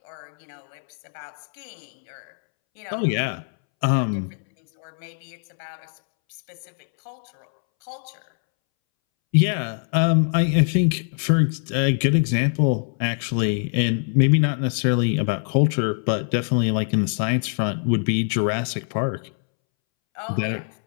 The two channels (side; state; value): right; silent; 63 dB below the other